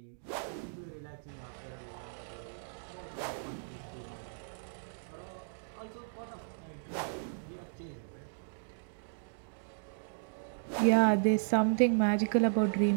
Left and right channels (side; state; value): left; silent; digital silence